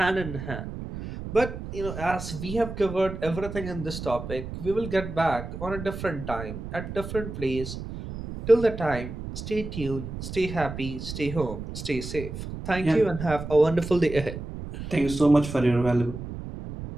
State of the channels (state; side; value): noise; right; rumble, 8 dB below the sound